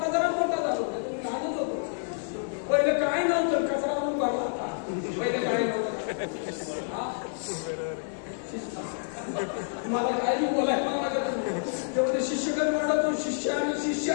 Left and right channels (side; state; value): right; silent; digital silence